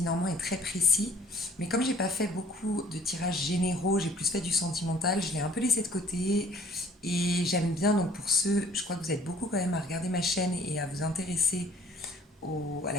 Normand est très précis. Mais comme j'ai pas fait beaucoup de tirages généraux, j'ai plus fait du sentimental, je l'ai un peu laissé de côté. Et j'aime bien, donc pour ceux, je crois que vous êtes beaucoup quand même à regarder ma chaîne et à vous intéresser à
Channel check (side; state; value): both; normal; correlation 0.55